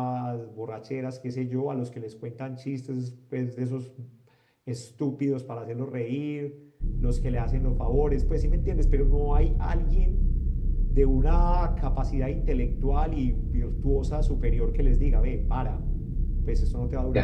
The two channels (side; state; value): both; identical; correlation 1.00